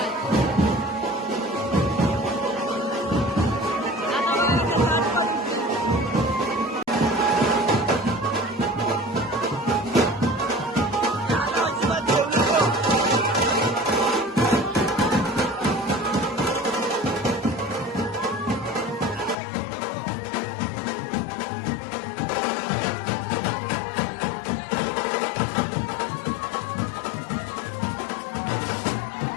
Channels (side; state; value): right; drops out; at 19.4 s